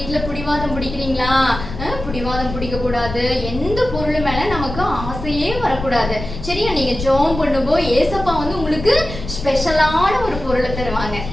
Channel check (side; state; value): left; noise; rumble, 8 dB below the sound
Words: பிடிவாதம் பிடிக்கிறீங்களா? பிடிவாதம் பிடிக்க கூடாது. எந்த பொருள் மேல நமக்கு ஆசையே வரக்கூடாது. சரியா? நீங்க ஜெபம் பண்ணும்போது ஏசப்பா வந்து உங்களுக்கு ஸ்பெஷலான ஒரு பொருளை தருவாங்க.